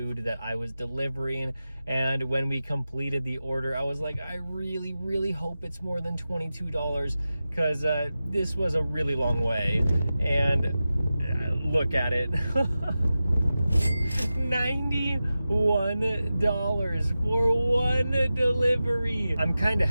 that I was delivering. And when we completed the order, I was like, I really, really hope it's more than $22, because this was a really long way. And look at it. $91 for one delivery. I'm kind of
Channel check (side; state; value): both; inverted; correlation -0.93